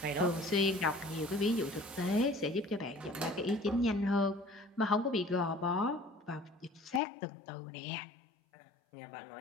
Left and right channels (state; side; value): drops out; right; at 7.0 s